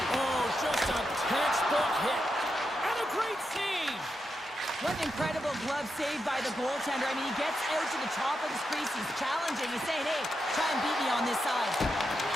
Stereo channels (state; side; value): normal; both; correlation 0.86